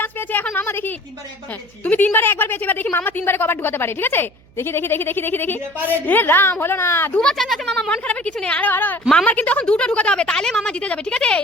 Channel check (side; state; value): right; noise; hum, 28 dB below the sound